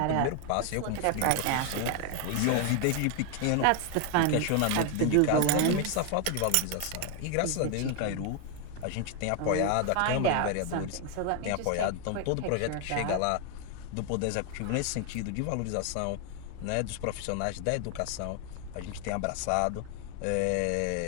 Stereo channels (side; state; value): both; different; correlation 0.00